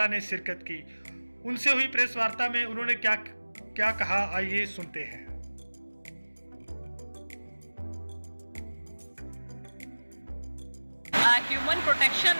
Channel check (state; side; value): inverted; both; correlation -1.00